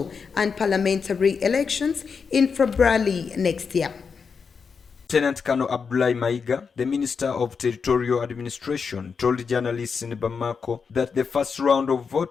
and parliamentary elections in February next year. Lieutenant Colonel Abdoulaye Maiga, the Minister of Territorial Administration, told journalists in Bamako that the first round of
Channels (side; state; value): right; quieter; 5.7 dB